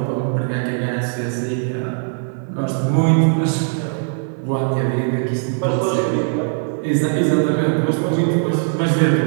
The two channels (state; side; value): silent; left; digital silence